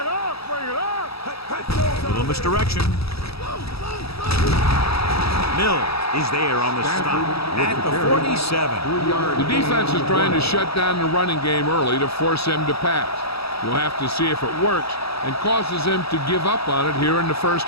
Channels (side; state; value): right; late; 0.77 ms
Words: up. A little misdirection. Mills is there on the stop at the 47. The defense is trying to shut down the running game early to force him to pass. We'll have to see if it works and causes him to give up on it here in the